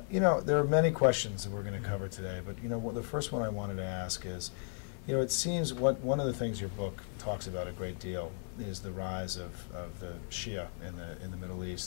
You know, there are many questions that we're going to cover today, but you know, the first one I wanted to ask is, you know, it seems one of the things your book talks about a great deal is the rise of the Shia in the Middle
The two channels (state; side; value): silent; right; 54 dB below the other